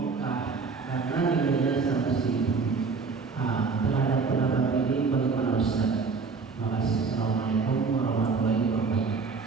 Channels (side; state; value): left; quieter; 4.7 dB